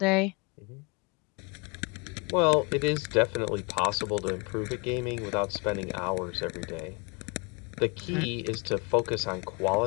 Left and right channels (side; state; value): right; quieter; 31.1 dB